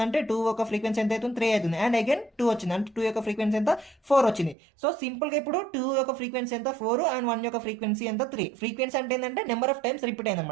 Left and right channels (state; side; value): drops out; left; at 4.5 s